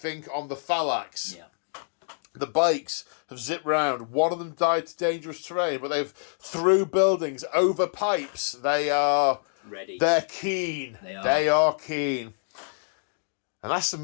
on the Thalax. Yeah. The bikes have zipped round. One of them died to dangerous terrain, but they've through buildings, over pipes. They are ready. They're keen. They are keen. And that's the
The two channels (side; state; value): right; silent; digital silence